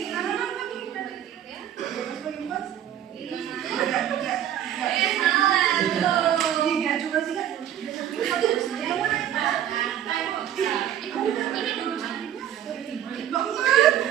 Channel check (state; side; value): quieter; left; 10.8 dB